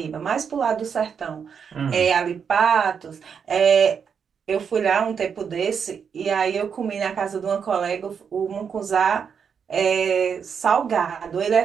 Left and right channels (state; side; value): quieter; left; 6.8 dB